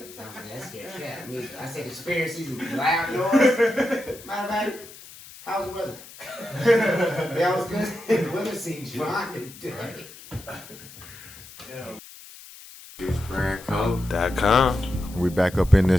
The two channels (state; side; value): noise; left; hiss, 18 dB below the sound